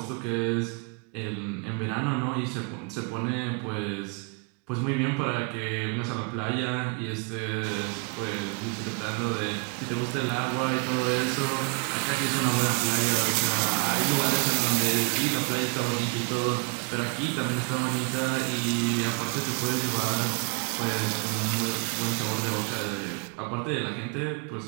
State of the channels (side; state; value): left; quieter; 34.0 dB